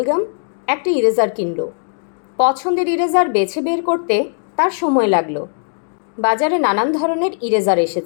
একটা ইরেজার কিনল। পছন্দের ইরেজার বেছে বের করতে তার সময় লাগলো। বাজারে নানান ধরনের ইরেজার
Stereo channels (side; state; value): right; silent; digital silence